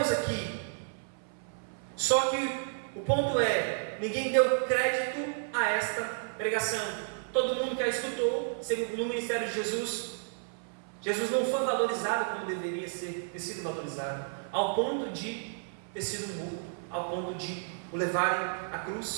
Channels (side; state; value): left; silent; 57 dB below the other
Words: aqui? Só que o ponto é, ninguém deu crédito a esta pregação. Todo mundo que a escutou, no ministério de Jesus, Jesus não foi valorizado como deveria ter sido valorizado, ao ponto de ter sido morto, ao ponto de o levarem à